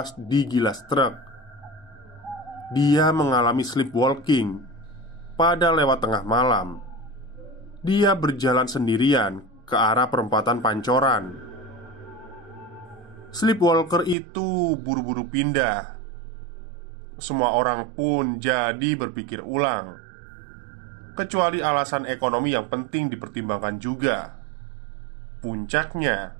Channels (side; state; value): left; drops out; at 14.2 s